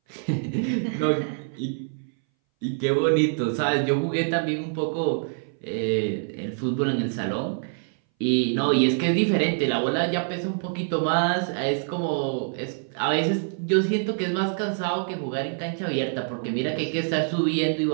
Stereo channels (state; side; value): silent; left; 60 dB below the other